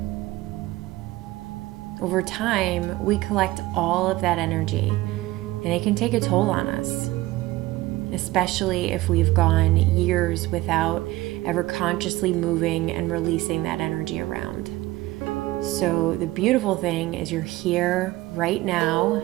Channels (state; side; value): quieter; left; 18.3 dB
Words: Over time, we collect all of that energy, and it can take a toll on us, especially if we've gone years without ever consciously moving and releasing that energy around. So the beautiful thing is you're here right now,